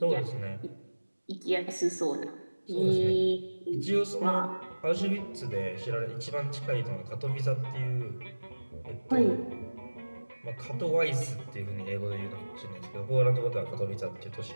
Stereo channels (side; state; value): both; inverted; correlation -1.00